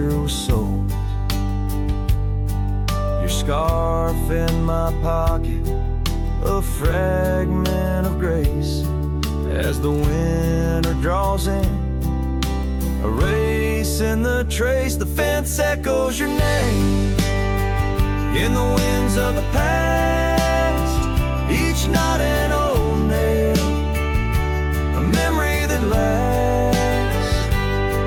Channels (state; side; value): identical; both; correlation 1.00